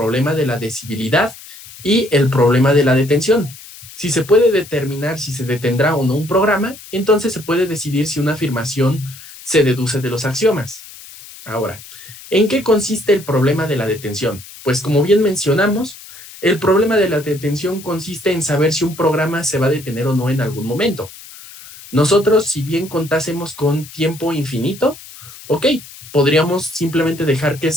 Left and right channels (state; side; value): noise; left; hiss, 17 dB below the sound